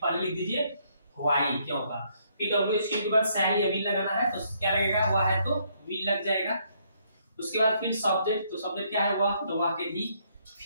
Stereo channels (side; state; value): both; inverted; correlation -0.70